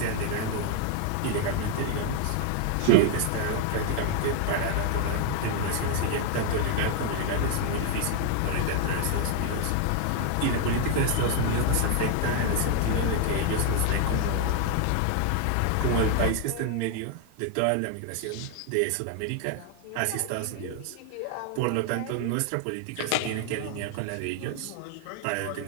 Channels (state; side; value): different; both; correlation 0.01